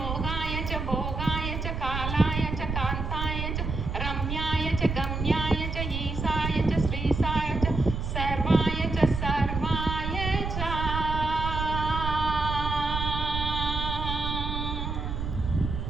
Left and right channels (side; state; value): right; noise; rumble, 3 dB below the sound